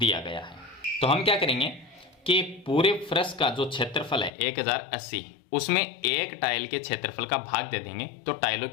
गया है। तो हम क्या करेंगे कि पूरे फर्श का जो क्षेत्रफल है 1080, उसमें एक टाइल के क्षेत्रफल का भाग दे देंगे तो टाइलों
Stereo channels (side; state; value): right; drops out; at 4.3 s